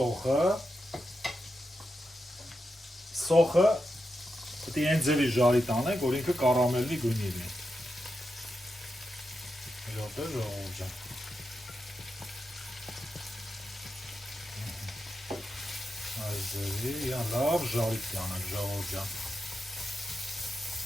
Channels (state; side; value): normal; both; correlation 0.87